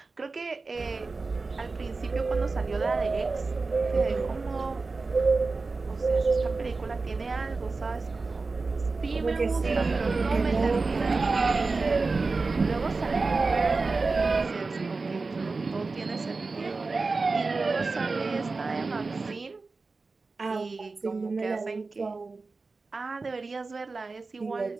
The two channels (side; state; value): left; quieter; 3.9 dB